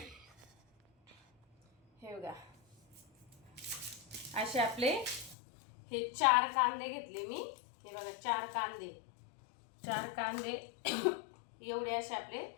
हे बघा, असे आपले हे 4 कांदे घेतले मी. हे बघा, 4 कांदे एवढे असे आपले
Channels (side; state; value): right; drops out; at 5.4 s